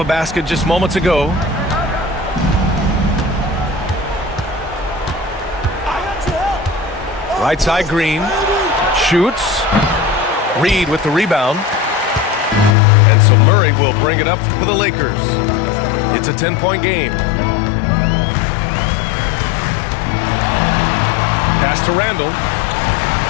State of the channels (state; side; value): drops out; right; at 12.8 s